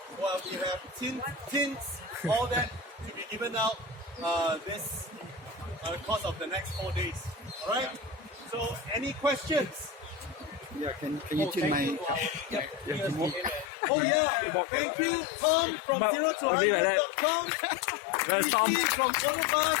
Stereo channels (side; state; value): right; drops out; at 13.7 s